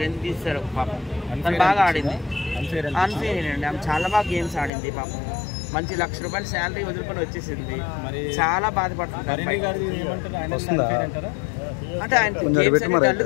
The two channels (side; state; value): right; drops out; at 4.7 s